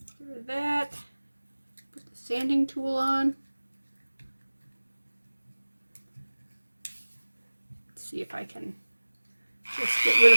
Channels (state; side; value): inverted; both; correlation -1.00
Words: Get rid of that. Put the sanding tool on. Let's see if I can just get rid of